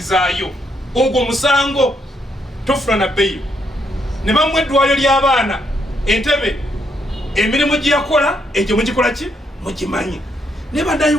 ogwo musango tofuna na bbeeyo ne bamuwa eddwaliro ly'abaana entebe emirimu gye yakola egyo mugikola ki mugimanyi ne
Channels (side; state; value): both; normal; correlation 0.75